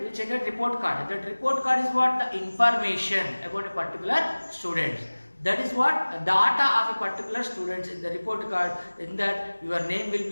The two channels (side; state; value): both; inverted; correlation -1.00